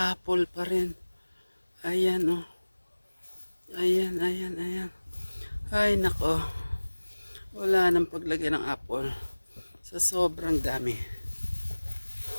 pa rin. Ayan o. Ayan, ayan, ayan. Ay nako, wala nang paglagay ng apple sa sobrang dami.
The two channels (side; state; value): both; inverted; correlation -1.00